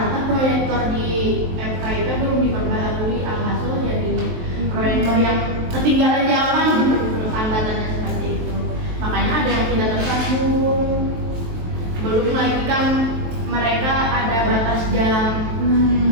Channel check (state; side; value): late; left; 23 ms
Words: proyektor di FKIP belum diperbaharui, alhasil jadi proyektor yang ketinggalan zaman gitu, hambatannya seperti itu. Makanya ada yang tidak tersambung. Belum lagi kan mereka ada batas jam.